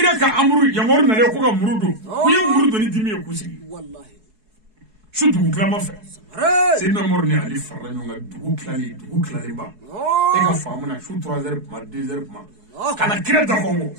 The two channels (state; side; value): late; left; 4.7 ms